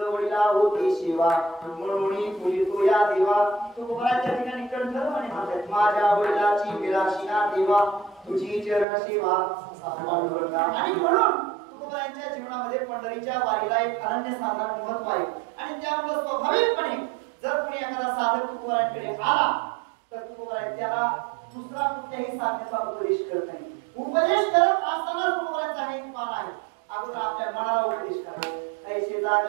होती सेवा म्हणून पूजितो या देवा तुकोबाच्या ठिकाणी कंठध्वनी म्हणतात माझ्या वडिलाची विलासिना देवा तुझी चरण सेवा पांडुरंगा आणि म्हणून तुकोबाच्या जीवनामध्ये पंढरीच्या वारीला एक अनन्यसाधारण महत्व आहे आणि त्यामुळे स्वाभाविकपणे जर कोणी एखादा साधक तुकोबाकडे आला तर तुकोबा त्याला दुसरा कुठल्याही साधनेचा उपदेश करत नाही उपदेश करत असताना तुकोबाचा एक मान आहे अगोदर आपल्या मनाला उपदेश करा ऐसे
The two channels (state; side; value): drops out; left; at 8.8 s